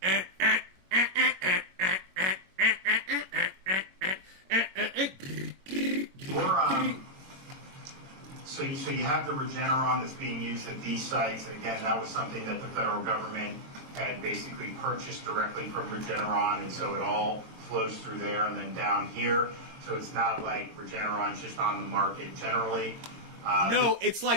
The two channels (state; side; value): late; left; 22 ms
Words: So you have the Regeneron that's being used at these sites, and again, that was something that the federal government had basically purchased directly from Regeneron, and so it all flows through there and then down here. So it's not like Regeneron's just on the market generally. No, it's